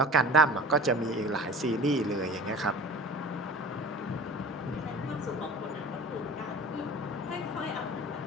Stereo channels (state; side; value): normal; both; correlation 0.39